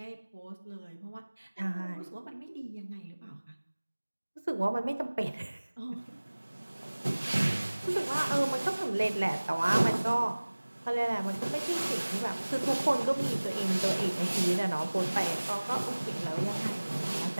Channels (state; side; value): inverted; both; correlation -1.00